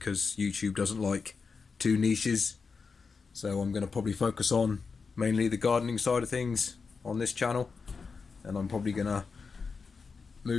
YouTube doesn't like two niches. So I'm going to probably focus on mainly the gardening side of things on this channel, and I'm probably going to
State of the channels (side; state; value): right; quieter; 4.9 dB